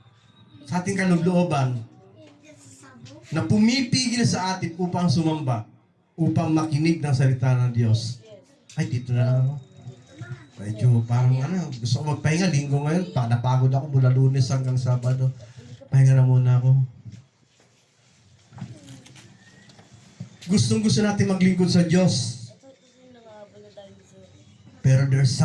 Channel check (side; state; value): both; identical; correlation 1.00